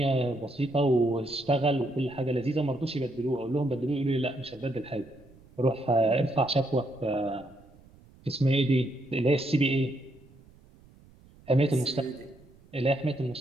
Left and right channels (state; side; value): noise; right; rumble, 26 dB below the sound